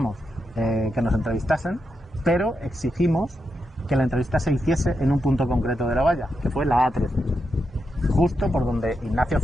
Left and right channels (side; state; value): both; normal; correlation 0.85